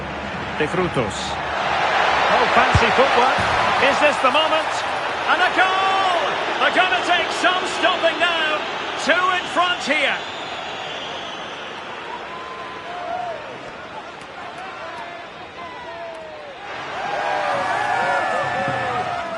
De Frutos. Oh, fancy footwork. Is this the moment? And a goal! They're going to take some stopping now. Two in front here.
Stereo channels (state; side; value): identical; both; correlation 1.00